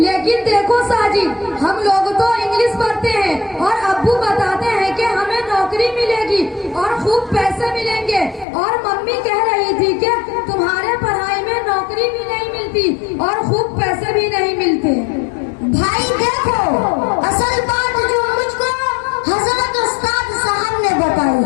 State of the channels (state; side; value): drops out; right; at 8.5 s